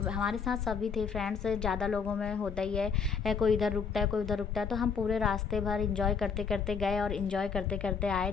हमारे साथ सभी थे फ्रेंड्स, ज़्यादा लोगों में होता ही है, कोई इधर रुकता है कोई उधर रुकता है। तो हम पूरे रास्ते भर इंजॉय करते करते गए और इंजॉय करते करते आए।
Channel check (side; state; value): right; quieter; 5.8 dB